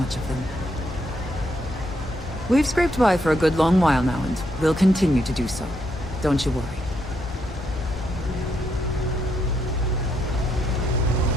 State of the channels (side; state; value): both; normal; correlation 0.77